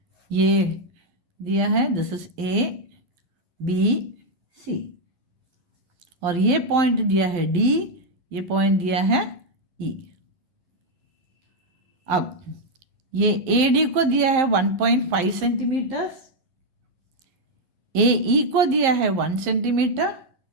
ये दिया है दिस इज ABC, और ये पॉइंट दिया है D, ये पॉइंट दिया है E। अब ये AD को दिया है 1.5 सेंटीमीटर्स, AE को दिया है 1 सेंटीमीटर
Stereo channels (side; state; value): left; late; 11 ms